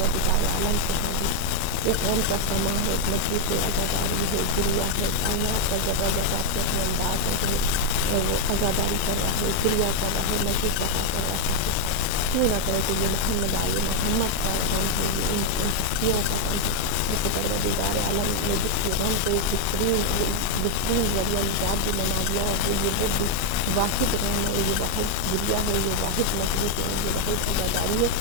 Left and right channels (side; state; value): both; different; correlation 0.00